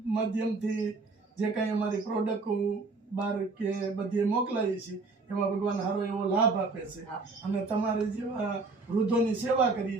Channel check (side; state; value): left; quieter; 3.8 dB